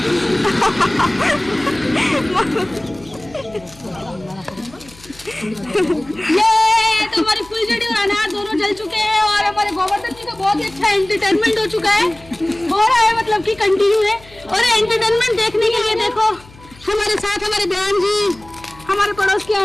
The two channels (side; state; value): left; noise; hum, 23 dB below the sound